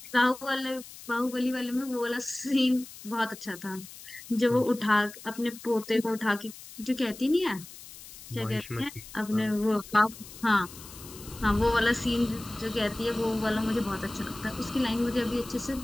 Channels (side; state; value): left; noise; hiss, 16 dB below the sound